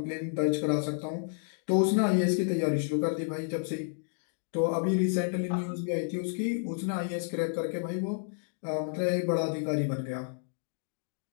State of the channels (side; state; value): right; silent; digital silence